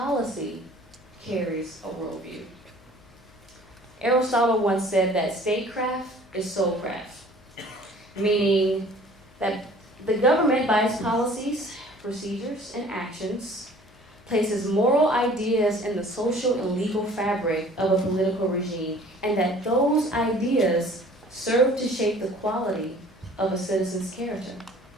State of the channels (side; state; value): left; noise; hum, 27 dB below the sound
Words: carries a worldview. Aristotle once said that statecraft is soulcraft, meaning that the government, by its policies, procedures, and actions, places moral ideas in the social and legal fabric of a political regime, and that those ideas serve to shape the quality of a citizen's character.